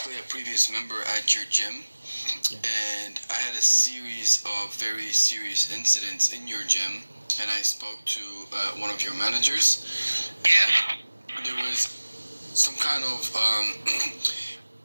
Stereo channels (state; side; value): inverted; both; correlation -1.00